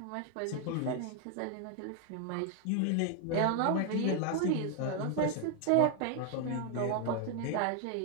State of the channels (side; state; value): both; different; correlation 0.00